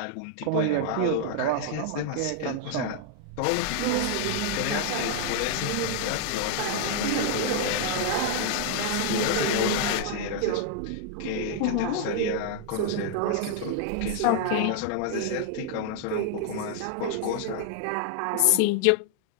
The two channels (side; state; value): both; different; correlation 0.00